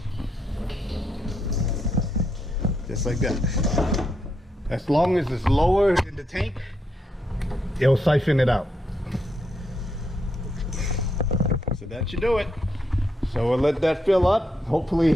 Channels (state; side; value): normal; both; correlation 0.79